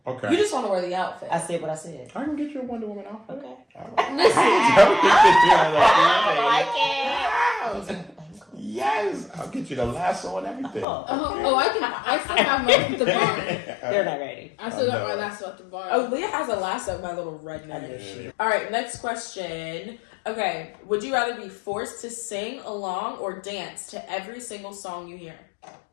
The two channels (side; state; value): right; drops out; at 10.9 s